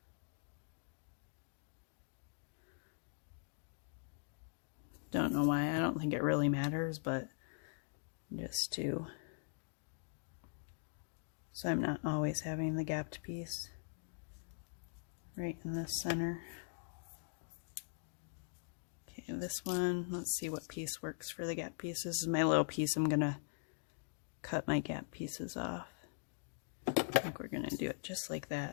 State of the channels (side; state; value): right; silent; digital silence